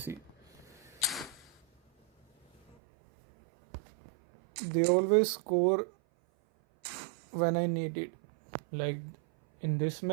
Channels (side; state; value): left; drops out; at 2.8 s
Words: they always score when I need it. Like in this